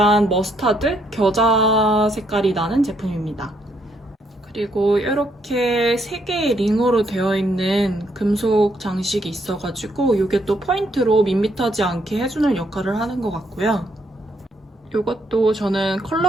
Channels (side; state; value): both; normal; correlation 0.73